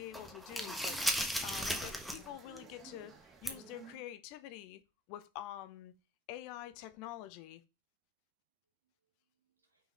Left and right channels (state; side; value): normal; both; correlation 0.62